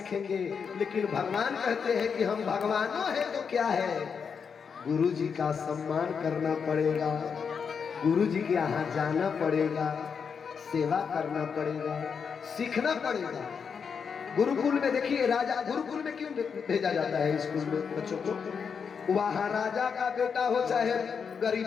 लेकिन भगवान कहते हैं कि हम भगवानों हैं तो क्या है, गुरु जी का सम्मान करना पड़ेगा, गुरु जी के यहाँ जाना पड़ेगा, सेवा करना पड़ेगा, सीखना पड़ेगा। गुरुकुल में देखिए, राजा गुरुकुल में क्यों भेजा जाता है स्कूल में बच्चों को? वहां राजा का बेटा हो चाहे गरीब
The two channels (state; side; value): quieter; right; 6.3 dB